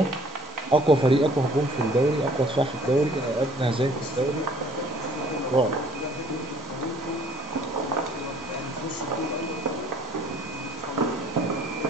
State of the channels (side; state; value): both; normal; correlation 0.56